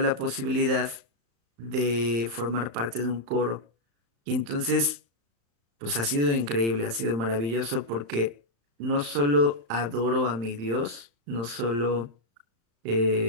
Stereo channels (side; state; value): left; late; 35 ms